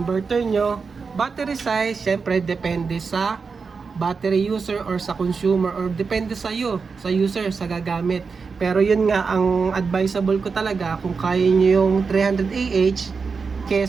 inverter nyo. Battery size, syempre depende sa battery user or sa consumer or depende sa iyo, sa user, sa gagamit. Pero yun nga, ang advisable ko talaga, kung kaya nyo yung 300 AH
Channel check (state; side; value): quieter; left; 5.1 dB